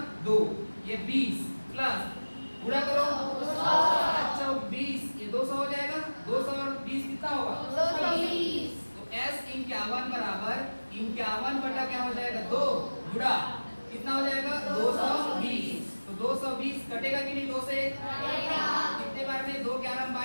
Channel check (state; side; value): inverted; both; correlation -1.00